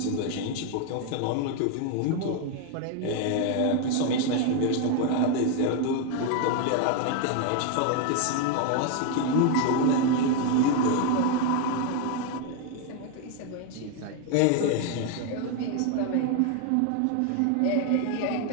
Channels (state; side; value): different; both; correlation 0.01